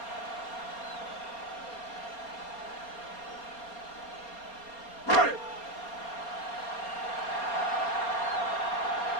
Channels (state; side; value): late; right; 4.3 ms